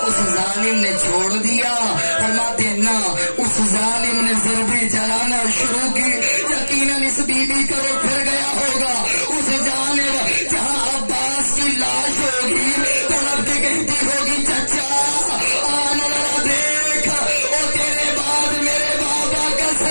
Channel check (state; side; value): inverted; both; correlation -1.00